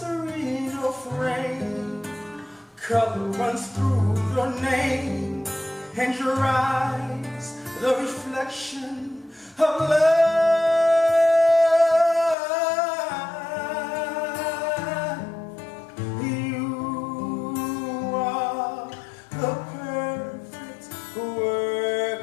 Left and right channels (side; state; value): right; drops out; at 12.4 s